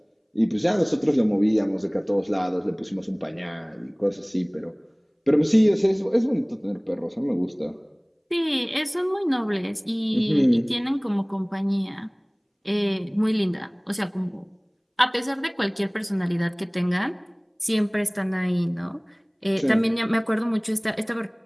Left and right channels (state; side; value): identical; both; correlation 1.00